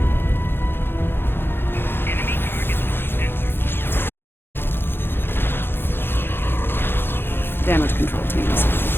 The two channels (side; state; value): right; late; 0.10 ms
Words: Damage control teams.